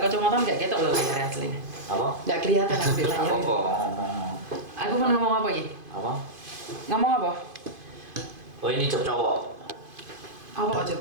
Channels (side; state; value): left; late; 2.5 ms